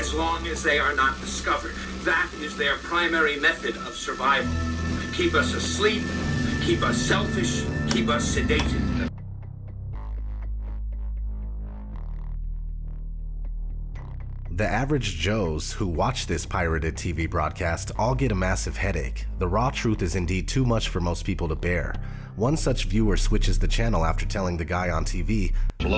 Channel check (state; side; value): identical; both; correlation 1.00